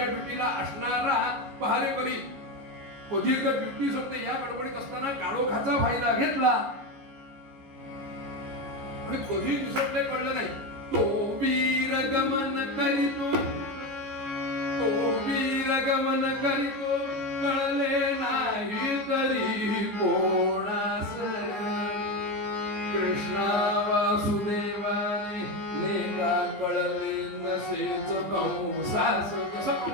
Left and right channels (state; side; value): late; left; 14 ms